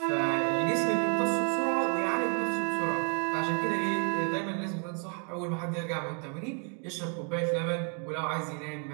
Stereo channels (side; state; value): left; quieter; 39.7 dB